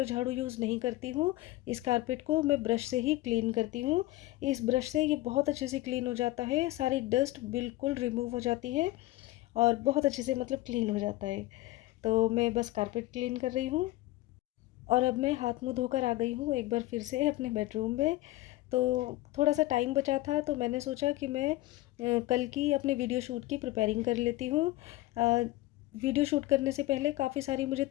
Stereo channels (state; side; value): quieter; right; 17.6 dB